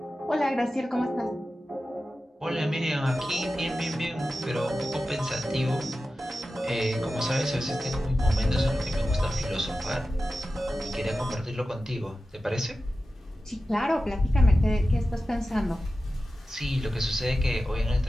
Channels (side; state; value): both; normal; correlation 0.94